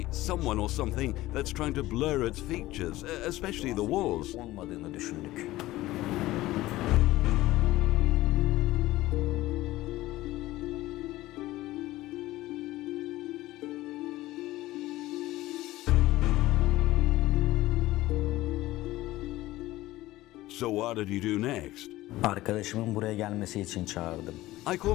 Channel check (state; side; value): quieter; right; 17.0 dB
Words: someone or something that's trying to blur its features, especially the walls. Olmadığını düşündük. So what did you do next? Arkadaşımın buraya gelmesi için çağırdım. I